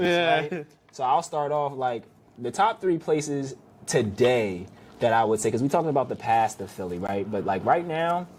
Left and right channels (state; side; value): identical; both; correlation 1.00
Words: right? So I'll start off, like, the top 3 places today that I would say, because we're talking about the past of Philly, right? But like right now,